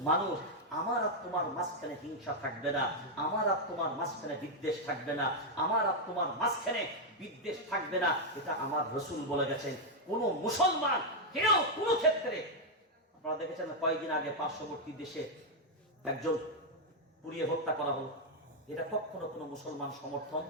মানুষ। আমার আর তোমার মাঝখানে হিংসা থাকবে না, আমার আর তোমার মাঝখানে বিদ্বেষ থাকবে না, আমার আর তোমার মাঝখানে বিদ্বেষ থাকবে না। এটা আমার রাসূল বলে গেছেন। কোন মুসলমান কেউ কোন ক্ষেত্রে, আপনারা দেখেছেন কয়েকদিন আগে পার্শ্ববর্তী দেশে একজন পুড়িয়ে হত্যা করা হলো, এটা কখনো কোনো মুসলমান সমর্থন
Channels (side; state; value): both; normal; correlation -0.01